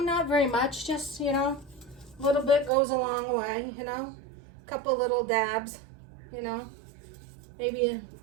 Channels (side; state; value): left; drops out; at 2.7 s